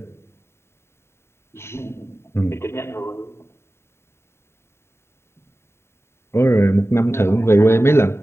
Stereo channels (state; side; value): late; right; 0.12 ms